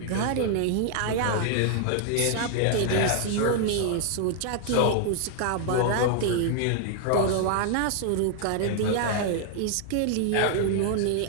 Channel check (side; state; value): both; different; correlation 0.00